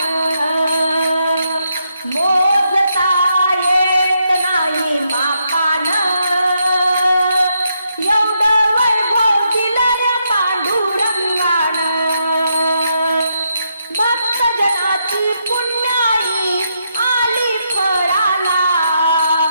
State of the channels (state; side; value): inverted; both; correlation -0.79